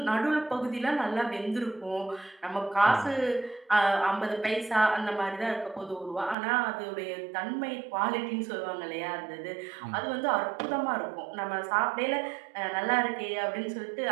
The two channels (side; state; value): left; drops out; at 6.4 s